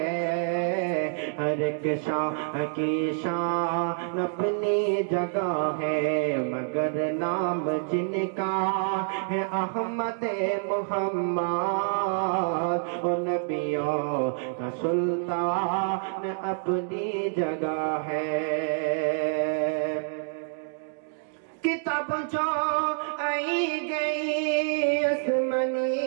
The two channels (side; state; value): left; silent; digital silence